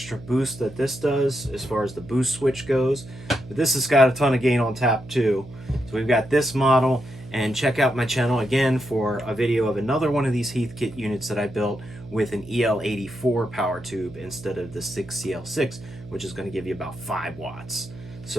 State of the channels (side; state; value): right; noise; hum, 16 dB below the sound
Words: boost that this does as far as the boost switch goes, but this has got a ton of gain on tap too. So we've got this model, and check out my channel again for a video of another one of these Heathkit units that I built with an EL84 power tube instead of the 6CL6, which is going to give you about 5 watts.